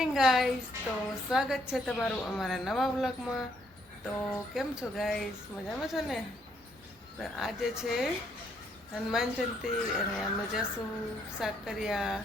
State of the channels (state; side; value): normal; both; correlation 0.71